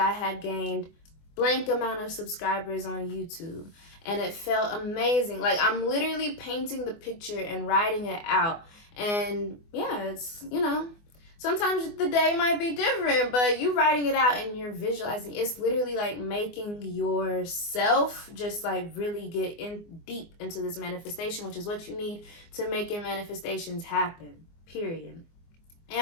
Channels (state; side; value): late; right; 24 ms